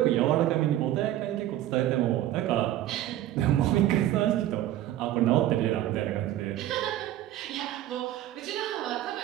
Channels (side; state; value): left; quieter; 13.2 dB